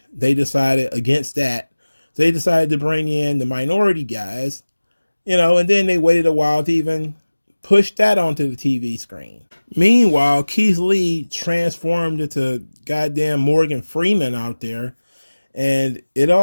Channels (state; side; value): inverted; both; correlation -1.00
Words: they decided against that. So they decided to bring in the minority guys. And then they waited a while to even push that onto the TV screen. Meanwhile, Keith Lee transformed into goddamn Morgan Freeman out there, and it